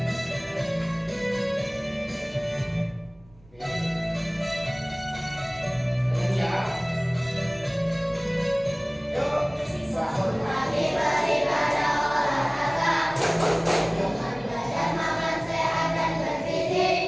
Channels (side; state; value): right; noise; rumble, 28 dB below the sound